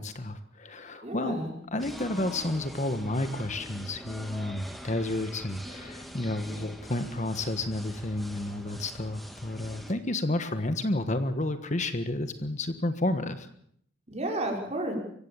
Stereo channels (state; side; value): normal; both; correlation 0.62